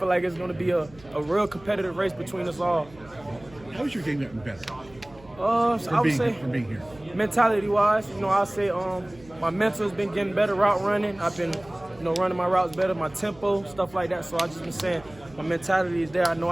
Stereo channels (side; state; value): right; noise; hum, 24 dB below the sound